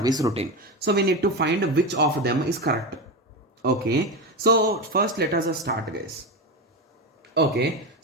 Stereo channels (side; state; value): both; normal; correlation 0.17